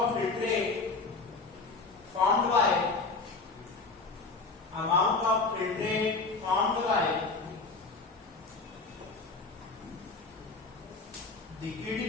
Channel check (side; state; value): right; quieter; 3.9 dB